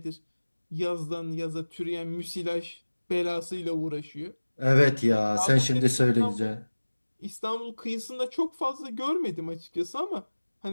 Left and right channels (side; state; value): both; inverted; correlation -1.00